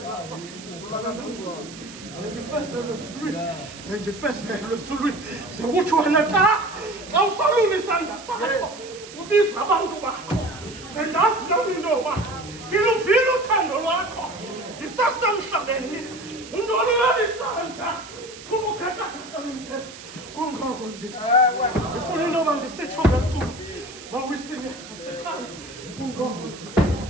ndifezelwe esulwini, sekuthi wena xa usolula isandla sakho, ubiza abantu bakho, sendazi nami intoba ngiluvile uthando lwakho ndisasemhlabeni, undolulele isandla kubukhathakhatha bendlela. Kungoko ndifuna intoba ndisitsho ngeculo mawisile asekhaya. Kungoko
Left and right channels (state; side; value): noise; right; hiss, 16 dB below the sound